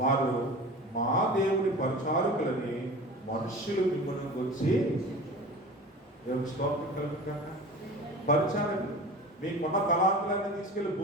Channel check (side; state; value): both; normal; correlation 0.36